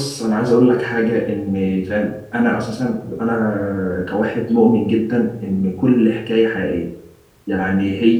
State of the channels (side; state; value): both; identical; correlation 1.00